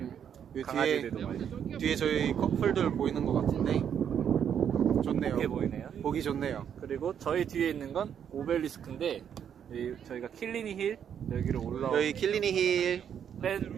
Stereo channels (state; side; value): quieter; left; 8.5 dB